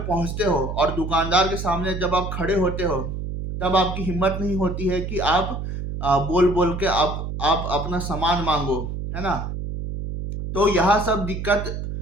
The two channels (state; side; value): noise; right; hum, 5 dB below the sound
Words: पहुंचते हो और दुकानदार के सामने जब आप खड़े होते हो तब आपकी हिम्मत नहीं होती है कि आप बोल बोल के आप अपना सामान मांगो, है ना? तो यह सब दिक्कत